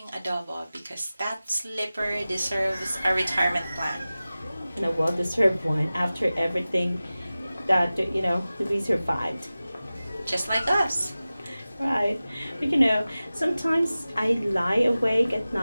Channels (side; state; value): both; inverted; correlation -0.96